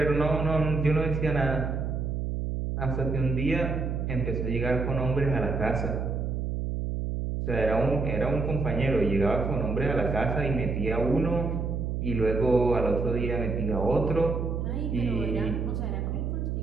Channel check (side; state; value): right; noise; hum, 2 dB below the sound